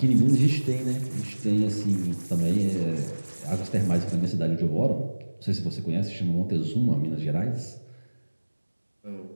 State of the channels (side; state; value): both; inverted; correlation -1.00